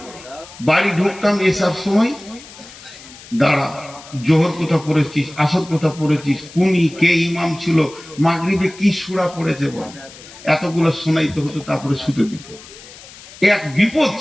বাড়ি ঢুকতাম এসব সময়, দাঁড়া, জোহর কোথা পড়েছিস, আসর কোথা পড়েছিস, কুনি কে ইমাম ছিল, মাগরিবে কি সূরা পড়েছে বল, এতগুলো শোনাইতে হতো, তারপরে শুতে দিত। এক বিপদ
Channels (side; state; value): left; noise; hiss, 19 dB below the sound